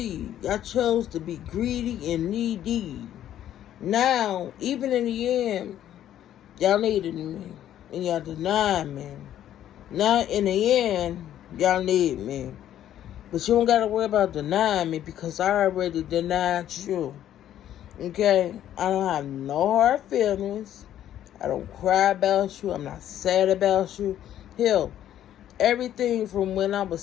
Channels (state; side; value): quieter; right; 11.5 dB